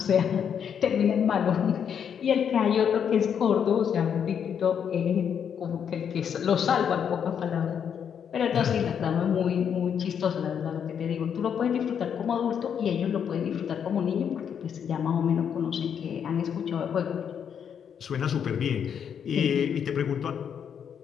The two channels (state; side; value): quieter; right; 7.9 dB